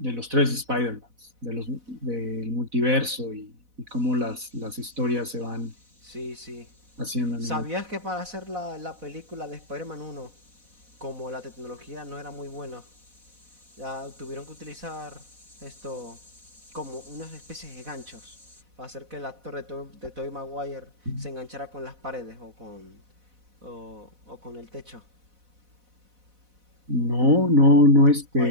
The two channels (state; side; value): late; left; 4.1 ms